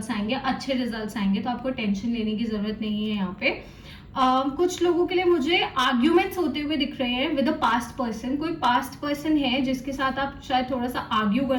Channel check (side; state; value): both; identical; correlation 1.00